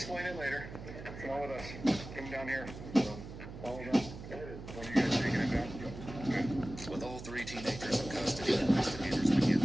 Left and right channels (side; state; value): right; noise; hum, 12 dB below the sound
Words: it later. Come on with us. Come down here. Follow down. What are you guys taking it down? With all 3 teenagers in custody, investigators begin